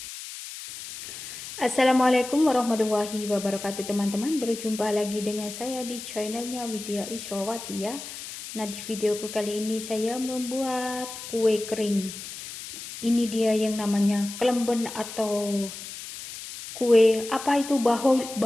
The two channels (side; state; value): left; noise; hiss, 11 dB below the sound